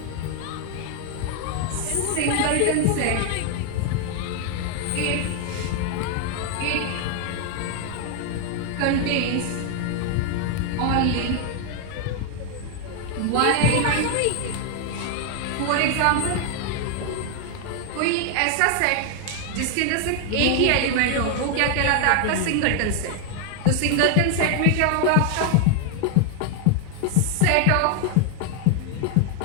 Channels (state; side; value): different; both; correlation 0.00